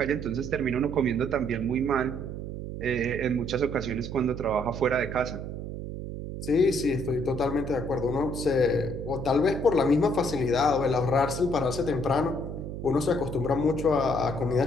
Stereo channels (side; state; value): right; noise; hum, 7 dB below the sound